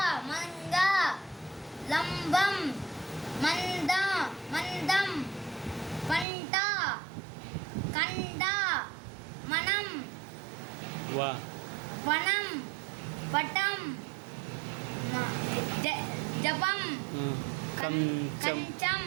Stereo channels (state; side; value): drops out; left; at 6.2 s